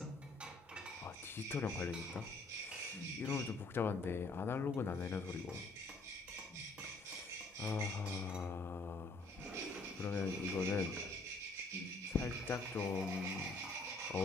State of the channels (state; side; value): quieter; right; 3.1 dB